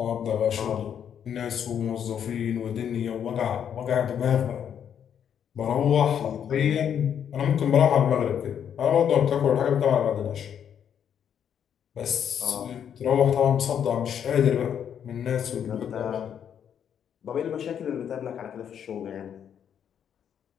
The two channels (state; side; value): quieter; right; 8.7 dB